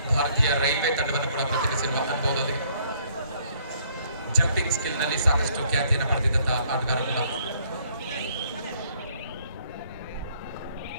ಭಾರತೀಯ ರೈಲ್ವೆ ತಂಡವನ್ನು ಕೂಡ ಪ್ರತಿನಿಧಿಸಿರುವ ಅನುಭವದೊಂದಿಗೆ ಜಂಪಿಂಗ್ ಸ್ಕಿಲ್ ನಲ್ಲಿ ಸಾಕಷ್ಟು ಖ್ಯಾತಿಯನ್ನು ಪಡೆದಿದ್ದಂತಹ ಆಟಗಾರ ಕೂಡ.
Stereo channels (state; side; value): inverted; both; correlation -0.65